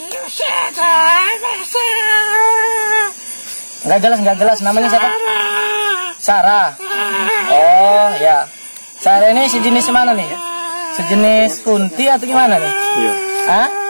Enggak jelas namanya siapa? Sarah. Oh ya. Sarah ini sejenis mana nih? Sejenis kunti atau gimana nih? Iya. Hah?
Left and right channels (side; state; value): both; inverted; correlation -1.00